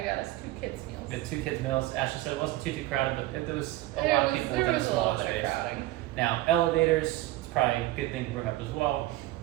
us 2 kids meals. We had 2 kids meals. Ashley said it wasn't too crowded, but there was a lot of people within a small space. Now elevators, it's probably a good thing to bring up as well.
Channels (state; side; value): quieter; left; 16.7 dB